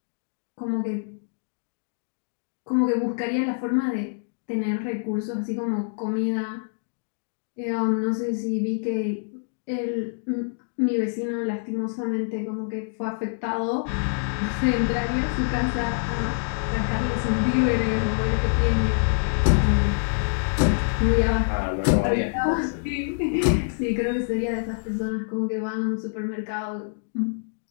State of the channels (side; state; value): right; silent; digital silence